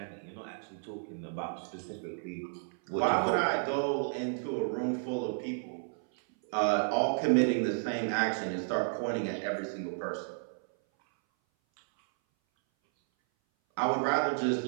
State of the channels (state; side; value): silent; left; 56 dB below the other